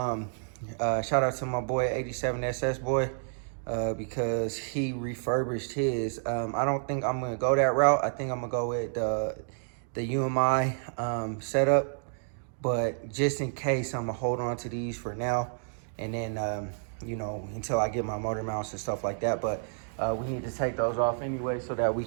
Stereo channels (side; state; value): left; silent; digital silence